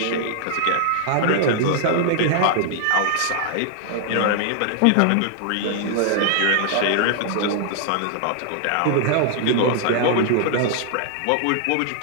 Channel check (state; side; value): different; both; correlation 0.00